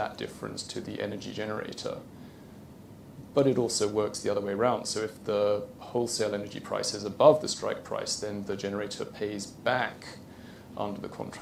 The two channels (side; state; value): both; identical; correlation 1.00